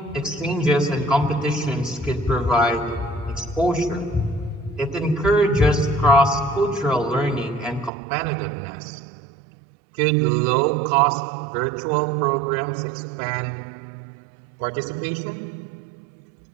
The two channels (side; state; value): left; drops out; at 7.9 s